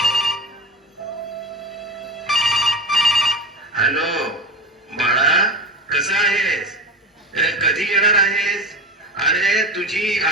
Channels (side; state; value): both; normal; correlation 0.27